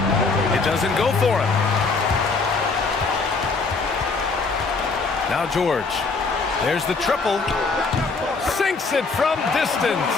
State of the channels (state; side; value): quieter; right; 4.2 dB